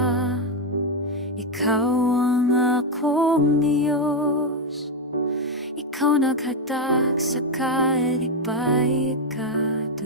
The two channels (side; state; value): both; normal; correlation 0.04